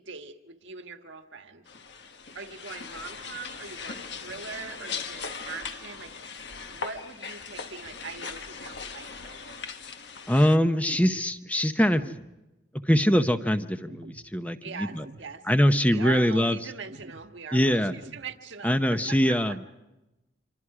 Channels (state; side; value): normal; both; correlation 0.83